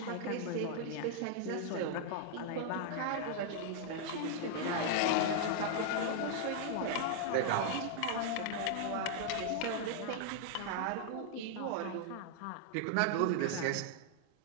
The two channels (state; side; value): different; both; correlation 0.00